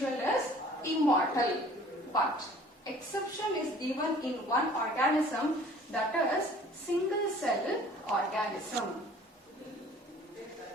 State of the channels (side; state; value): both; normal; correlation 0.50